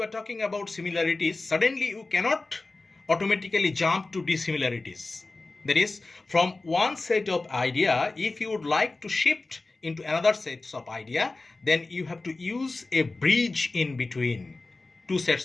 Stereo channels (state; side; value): quieter; right; 3.3 dB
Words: are talking about similarities, suddenly you cannot automatically jump to dissimilarities. That is, from one set of idea, if you would like to shift into another set of idea, then you have to use a bridge in between two